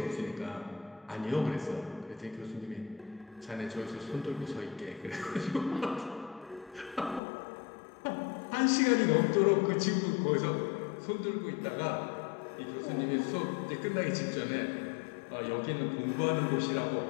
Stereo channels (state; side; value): drops out; right; at 7.2 s